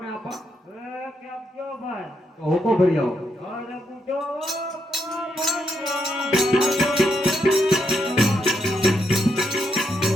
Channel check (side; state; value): both; normal; correlation 0.79